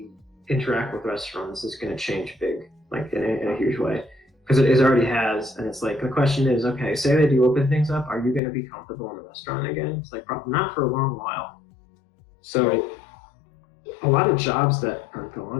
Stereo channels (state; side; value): drops out; right; at 8.4 s